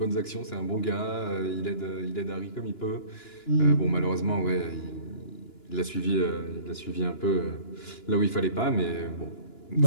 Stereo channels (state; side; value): late; right; 2.9 ms